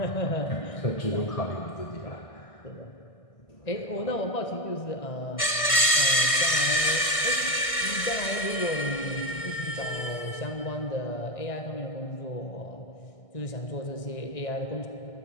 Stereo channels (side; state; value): right; late; 1.6 ms